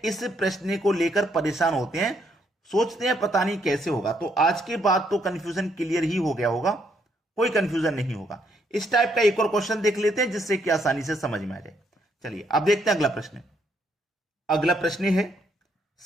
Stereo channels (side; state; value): both; normal; correlation 0.73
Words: इस प्रश्न को लेकर परेशान होते हैं, सोचते हैं पता नहीं कैसे होगा। तो आज के बाद तो कंफ्यूजन क्लियर ही हो गया होगा, कोई कंफ्यूजन नहीं होगा। इस टाइप का एक और क्वेश्चन देख लेते हैं जिससे कि आसानी से समझ में आ जाए। चलिए अब देखते हैं अगला प्रश्न। अगला प्रश्न है,